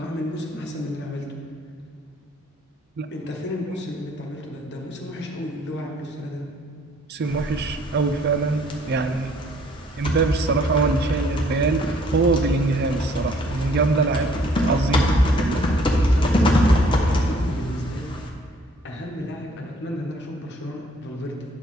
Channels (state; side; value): normal; both; correlation 0.60